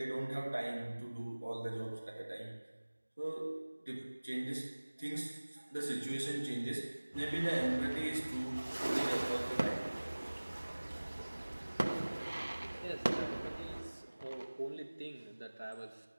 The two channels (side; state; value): both; inverted; correlation -1.00